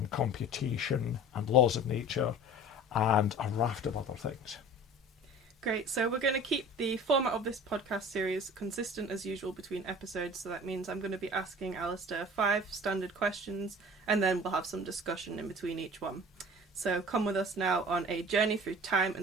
computation and laws of nature and a raft of other things. Great, so we're going to keep the format of this podcast series consistent as usual between episodes, so that means I'm going to be asking Alasdair 5 standard questions, and then we'll have some discussion in between each one. So come with us now on a journey through time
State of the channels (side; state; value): both; normal; correlation 0.42